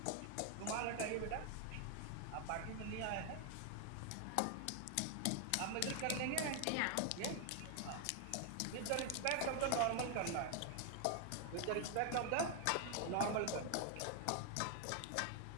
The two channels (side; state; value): both; different; correlation 0.00